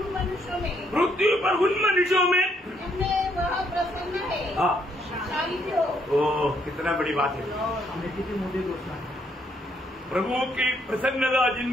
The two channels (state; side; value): normal; both; correlation 0.71